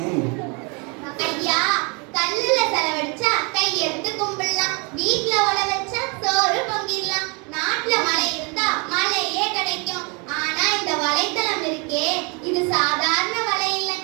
ஐயா, கல்லுல செலவழிச்சா கை எடுத்து கும்பிடலாம், வீட்ல உழ வச்சா சோறு பொங்கிடலாம், நாட்டுல மழை இருந்தா மழையே கிடைக்கும். ஆனா இந்த வலைத்தளம் இருக்கே, இது சாதாரண வலை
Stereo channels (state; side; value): quieter; left; 32.2 dB